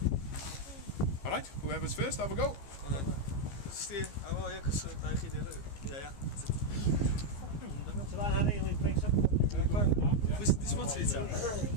Alright, whoever's first, have a go. Steer, oh yeah, because I did it. Yeah. So that had a link mix up. This what's it? Yeah,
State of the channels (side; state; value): right; late; 15 ms